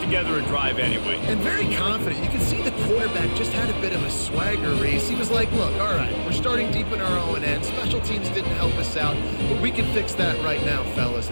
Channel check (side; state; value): both; inverted; correlation -1.00